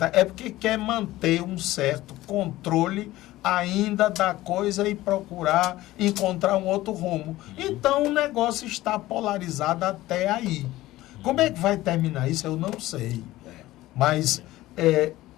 é porque quer manter um certo controle ainda da coisa e procurar encontrar um outro rumo. Então o negócio está polarizado até aí. Como é que vai terminar isso? Eu não sei. Mas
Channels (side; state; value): right; quieter; 16.7 dB